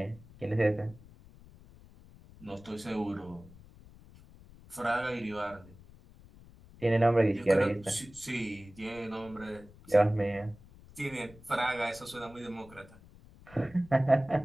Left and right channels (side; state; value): left; noise; rumble, 22 dB below the sound